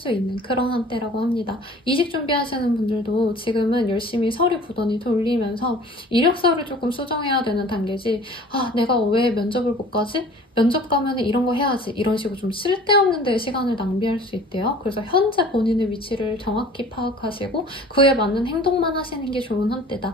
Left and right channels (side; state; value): both; normal; correlation 0.47